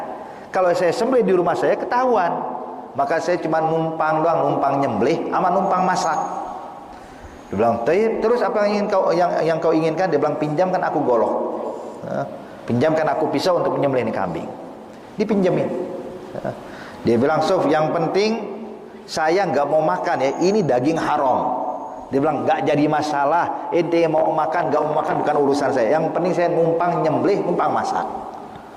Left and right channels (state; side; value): identical; both; correlation 1.00